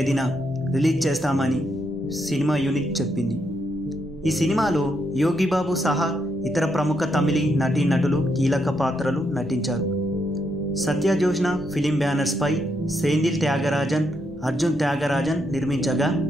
రిలీజ్ చేస్తామని సినిమా యూనిట్ చెప్పింది. ఈ సినిమాలో యోగిబాబు సహా ఇతర ప్రముఖ తమిళీ నటీనటులు కీలక పాత్రలు నటించారు. సత్యజోష్ణ ఫిలిం బ్యానర్స్పై సెంధిల్ త్యాగరాజన్, అర్జున్ త్యాగరాజన్ నిర్మించగా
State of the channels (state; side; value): noise; right; rumble, 22 dB below the sound